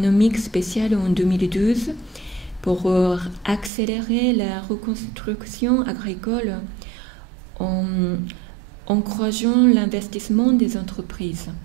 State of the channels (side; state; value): left; drops out; at 3.7 s